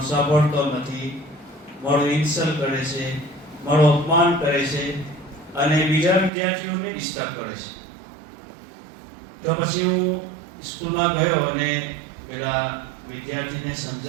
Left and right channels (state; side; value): drops out; left; at 6.3 s